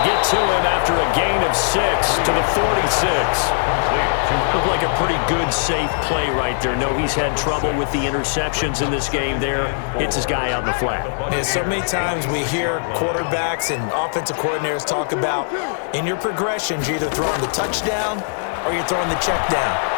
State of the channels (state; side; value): silent; right; 66 dB below the other